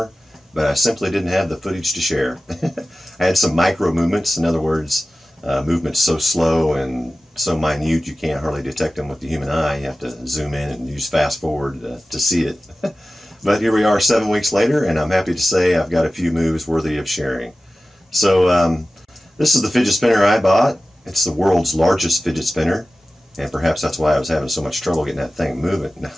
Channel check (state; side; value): normal; both; correlation 0.96